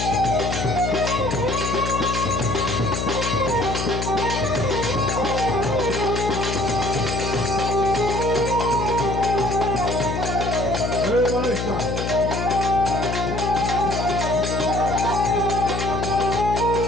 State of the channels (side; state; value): left; noise; hum, 3 dB below the sound